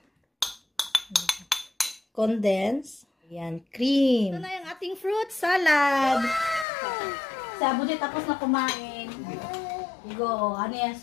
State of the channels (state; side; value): drops out; right; at 6.7 s